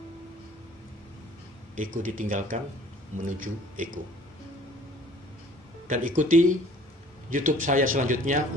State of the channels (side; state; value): both; normal; correlation 0.52